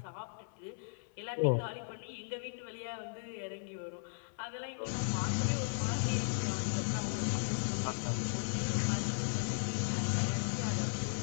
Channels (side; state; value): right; silent; 53 dB below the other